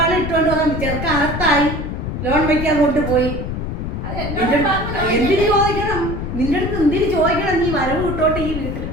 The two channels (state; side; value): noise; left; rumble, 5 dB below the sound